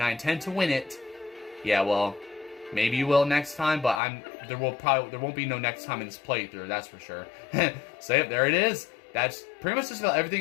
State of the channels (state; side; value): drops out; right; at 4.0 s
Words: intend to win it. Yeah, well, maybe you will next time, but there won't be no next time in this playthrough, that's for sure. So yep, there it is. That's pretty much just about